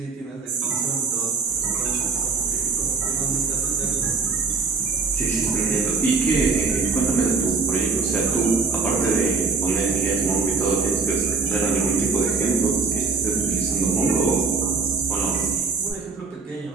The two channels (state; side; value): quieter; left; 4.6 dB